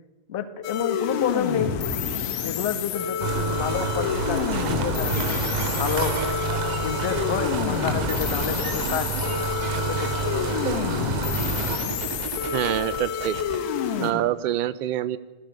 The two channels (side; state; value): left; late; 1.2 ms